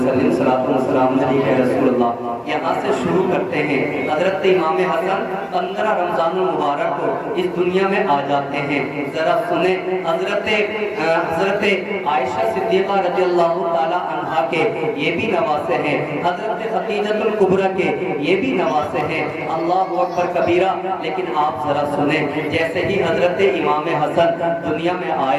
صلاۃ و سلام علیہ رسول اللہ۔ یہاں سے شروع کرتے ہیں۔ حضرت امام حسن 15 رمضان المبارک کو اس دنیا میں آ جاتے ہیں۔ ذرا سنیں، حضرت عائشہ صدیقہ رضی اللہ تعالی عنہا کے یہ بھی نواسے ہیں، حضرت خدیجہ الکبریٰ کے یہ بھی نواسے ہیں۔ اللہ اکبر کبیرہ۔ لیکن آپ ذرا سنیں، جیسے ہی حضرت امام حسن دنیا میں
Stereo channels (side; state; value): both; identical; correlation 1.00